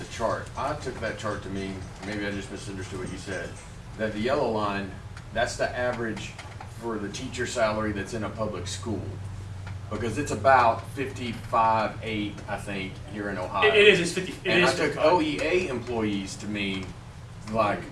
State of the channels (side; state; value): both; identical; correlation 1.00